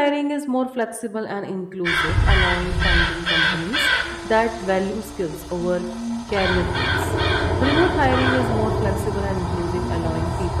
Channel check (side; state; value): both; identical; correlation 1.00